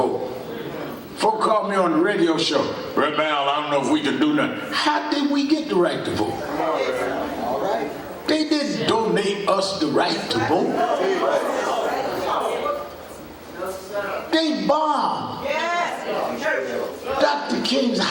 Folk called me on the radio show. Red Bell, I don't know if we can do nothing. How did we get the right to vote? They didn't donate us the right to vote. They bombed Dr. King's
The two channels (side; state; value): both; identical; correlation 1.00